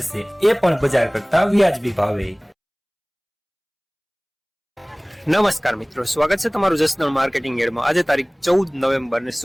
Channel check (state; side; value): identical; both; correlation 1.00